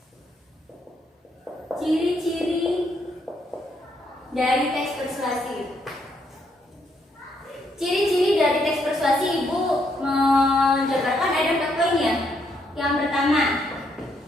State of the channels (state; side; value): normal; both; correlation 0.74